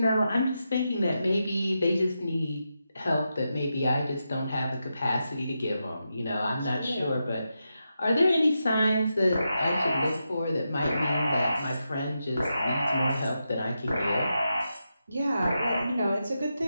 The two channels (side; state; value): both; inverted; correlation -0.87